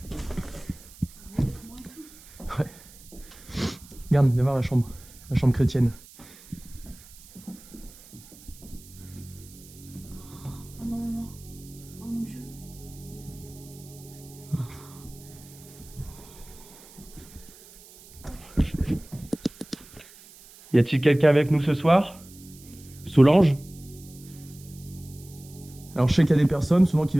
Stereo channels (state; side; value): noise; right; hiss, 21 dB below the sound